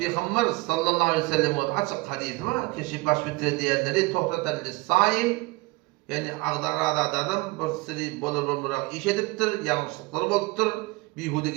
sallallahu aleyhi ve sellem açyk hadis var. Kişi baş tutar diýenleri tohtatan lis-saim, yani agdarada adam bir siri bolur iş edipdir, ýalňyşlyklary bolupdyr,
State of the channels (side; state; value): left; quieter; 23.4 dB